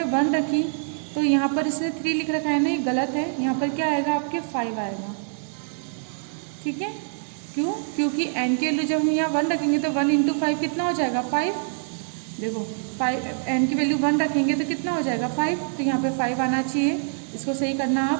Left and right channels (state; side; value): silent; left; 62 dB below the other